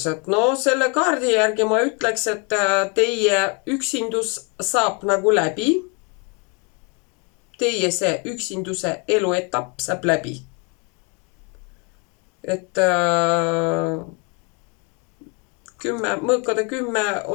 No selle kaardi järgi ma ütleks, et teie üksindus saab nagu läbi. Teie see üksinduse eluetapp saab läbi. Et mõõkade 10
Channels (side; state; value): right; quieter; 33.9 dB